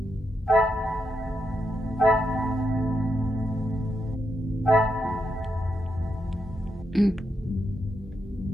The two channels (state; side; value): normal; both; correlation 0.83